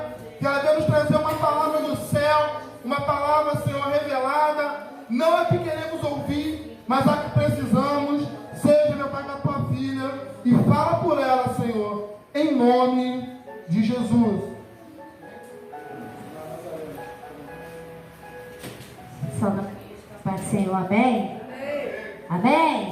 Que ela deve nos trazer uma palavra do céu, uma palavra, Senhor, revelada. Não a que queremos ouvir, mas a que precisamos. Seja, meu Pai, com a tua filha e fala por ela, Senhor, em nome de Jesus. Só na paz do Senhor, amém?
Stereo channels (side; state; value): both; identical; correlation 1.00